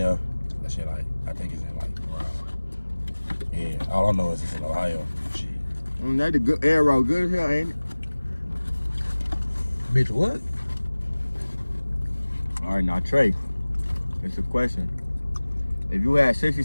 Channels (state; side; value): inverted; both; correlation -1.00